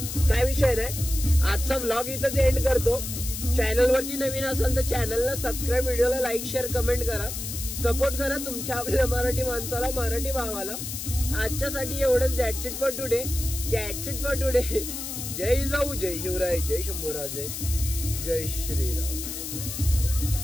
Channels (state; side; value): noise; left; hiss, 6 dB below the sound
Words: काय विषय नाही. आजचा व्लॉग इथंच एंड करतो. चॅनल वरती नवीन असाल तर चॅनलला सबस्क्राईब, व्हिडिओला लाईक शेअर कमेंट करा. सपोर्ट करा तुमच्या आपल्या मराठी माणसाला, मराठी भावाला. आजच्यासाठी एवढंच. That's it for today. जय जाऊ, जय शिवराय, जय शंभूराजे, जय श्रीराम.